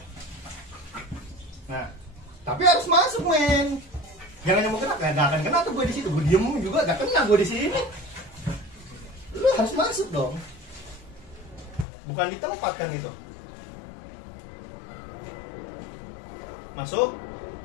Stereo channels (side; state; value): right; drops out; at 11.9 s